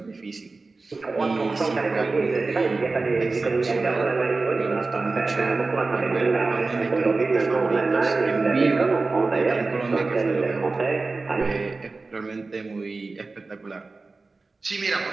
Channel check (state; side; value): quieter; left; 3.7 dB